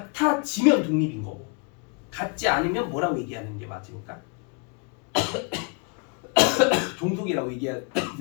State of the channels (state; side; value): quieter; right; 34.6 dB